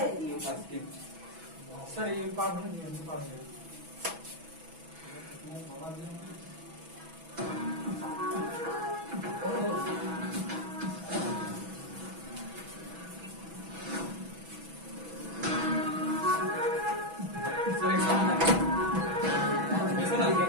सर? ये पार होने दिया, पार हो गया। सर एक सामने ऐसा ना लिखा,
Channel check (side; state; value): left; late; 6.1 ms